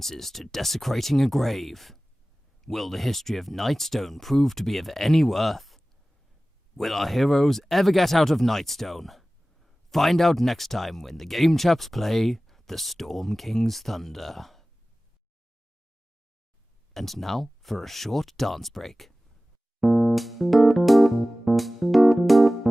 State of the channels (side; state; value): both; normal; correlation 0.97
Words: to desecrating a grave? Will the history of Nightstone prove to be of any worth? Will our heroes ever get out of Nightstone? Find out next time when the Game Chaps play The Storm King's Thunder. And now for a short dance break.